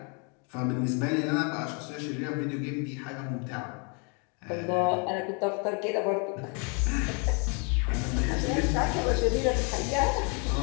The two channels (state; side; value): quieter; right; 36.0 dB